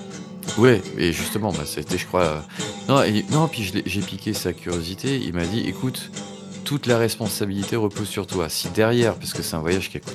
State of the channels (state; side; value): identical; both; correlation 1.00